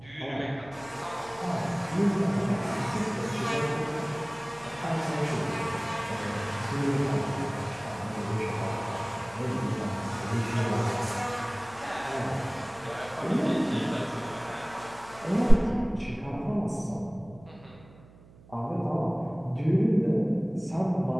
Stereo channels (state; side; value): noise; right; hum, 23 dB below the sound